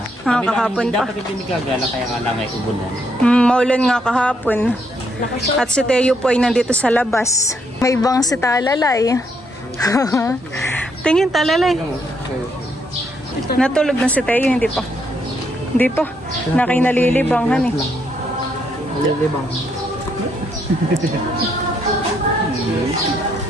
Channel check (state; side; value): normal; both; correlation 0.74